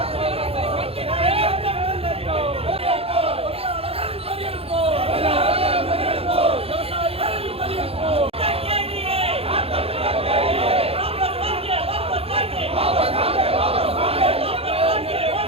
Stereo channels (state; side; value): late; left; 0.28 ms